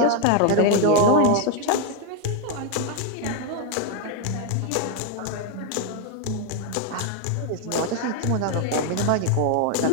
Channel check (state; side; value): different; both; correlation 0.01